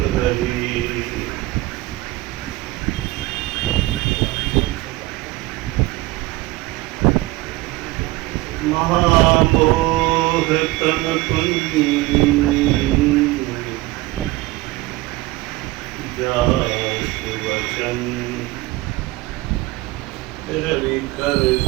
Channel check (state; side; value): quieter; left; 19.3 dB